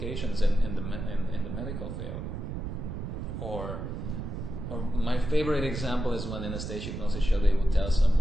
in the medical field. Or my favorite example is when in a stage hypnosis show they would tell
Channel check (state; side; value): noise; right; rumble, 5 dB below the sound